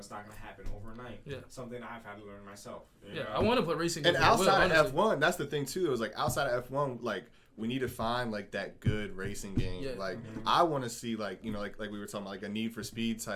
not gonna happen overnight. Something I've had to learn myself. You know? I want to play racing games. And outside of F1, that's the thing too. It was like outside of F1, like we need to find like that good racing game. Like I want to see like you know like we were talking about like a Need for Speed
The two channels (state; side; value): identical; both; correlation 1.00